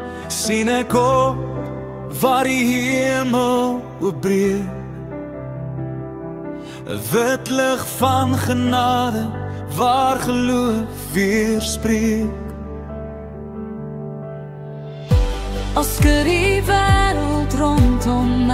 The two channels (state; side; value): identical; both; correlation 1.00